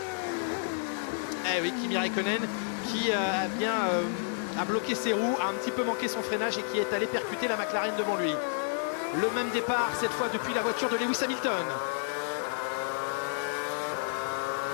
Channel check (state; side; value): silent; right; 57 dB below the other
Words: Eh oui, Kimi Raikkonen qui a bien a bloqué ses roues, a un petit peu manqué son freinage et qui est allé percuter la McLaren devant lui. Le même départ cette fois depuis la voiture de Lewis Hamilton.